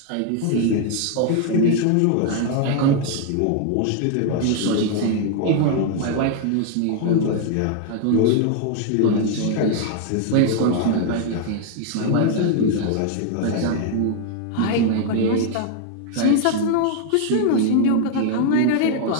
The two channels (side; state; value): both; different; correlation 0.00